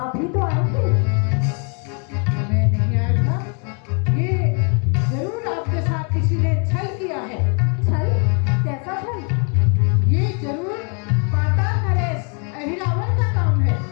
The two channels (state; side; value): quieter; right; 38.8 dB